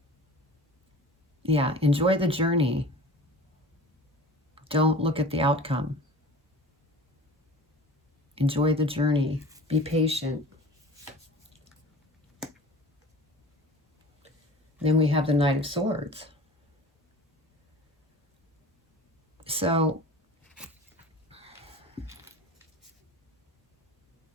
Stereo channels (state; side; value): normal; both; correlation 0.40